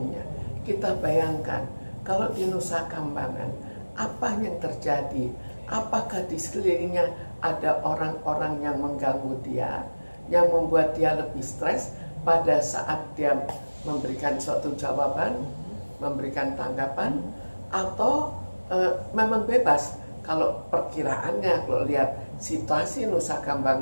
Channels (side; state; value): both; inverted; correlation -1.00